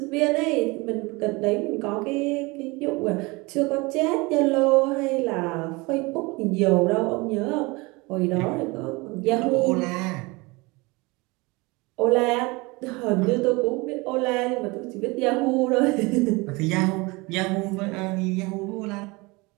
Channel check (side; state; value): left; quieter; 24.9 dB